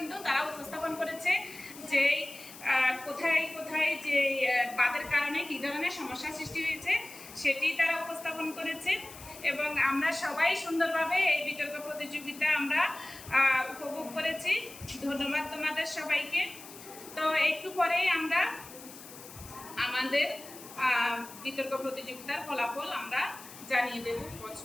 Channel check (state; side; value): noise; left; hiss, 16 dB below the sound